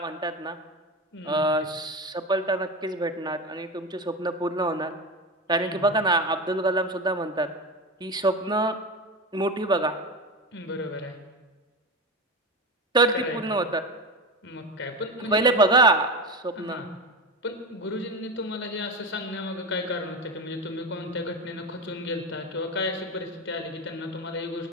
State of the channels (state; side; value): normal; both; correlation 0.22